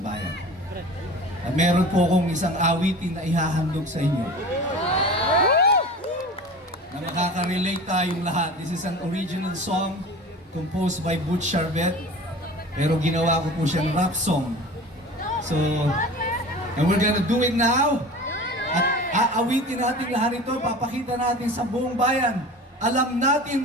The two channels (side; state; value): both; normal; correlation 0.37